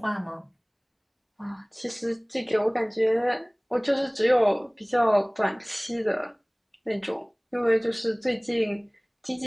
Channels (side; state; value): both; identical; correlation 1.00